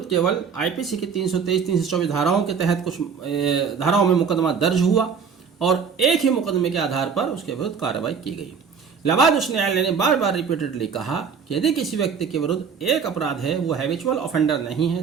केवल आईपीसी की 323-324 धाराओं के तहत कुछ धाराओं में मुकदमा दर्ज हुआ और एक ही मुकदमे के आधार पर उसके विरुद्ध कार्रवाई की गई। इलाहाबाद उच्च न्यायालय ने बार बार रिपीटेडली कहा कि यदि किसी व्यक्ति के विरुद्ध एक अपराध है, वो हैबिचुअल ऑफेंडर नहीं है,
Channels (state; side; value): quieter; left; 6.3 dB